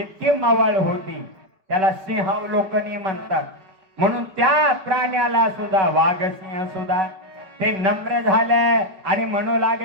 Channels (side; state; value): left; late; 5.3 ms